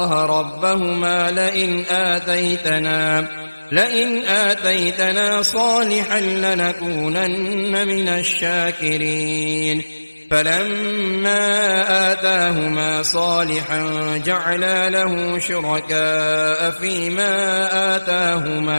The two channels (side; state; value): both; inverted; correlation -1.00